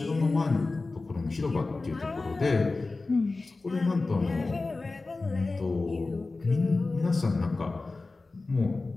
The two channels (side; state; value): right; quieter; 3.5 dB